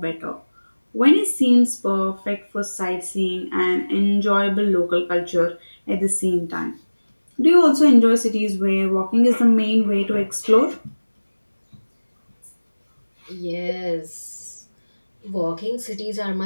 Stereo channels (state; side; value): inverted; both; correlation -1.00